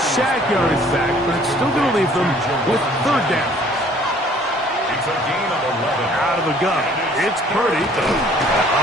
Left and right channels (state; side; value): normal; both; correlation 0.56